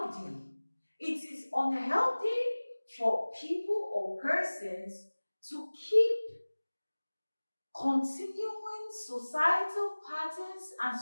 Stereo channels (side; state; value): both; inverted; correlation -1.00